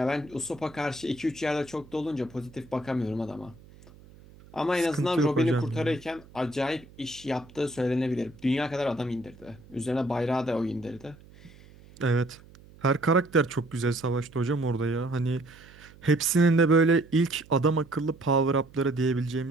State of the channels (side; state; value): right; noise; hum, 23 dB below the sound